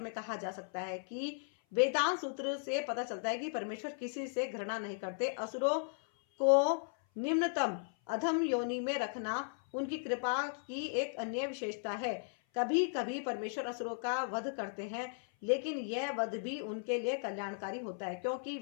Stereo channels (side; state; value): right; silent; 54 dB below the other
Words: में कहा जा सकता है कि वेदांत सूत्र से पता चलता है कि परमेश्वर किसी से घृणा नहीं करते। असुरों को निम्नतम अधम योनि में रखना उनकी कृपा की एक अन्य विशेषता है। कभी कभी परमेश्वर असुरों का वध करते हैं, लेकिन यह वध भी उनके लिए कल्याणकारी होता है, क्योंकि